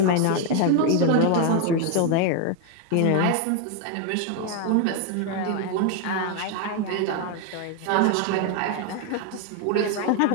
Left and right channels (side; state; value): both; different; correlation 0.01